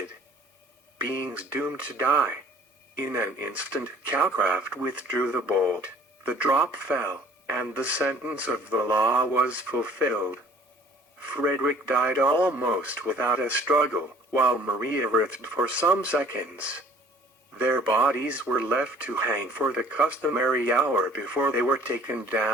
beings doomed to die. In an instant Calcraft withdrew the bolt, the drop fell, and the sentence of the law was fulfilled. Frederick died almost without a struggle, while Maria writhed for some seconds. Their bodies were left to hang for the customary hour before they were taken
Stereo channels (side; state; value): both; normal; correlation 0.53